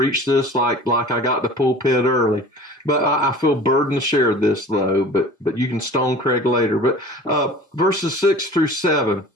this like I got the pulpit early. But I feel burdened to share this, though. But you can stone Craig later. But verses 6 through 7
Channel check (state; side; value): normal; both; correlation 0.42